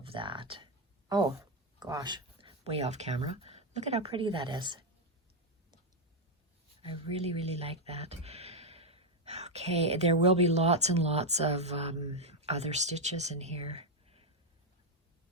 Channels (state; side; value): normal; both; correlation 0.03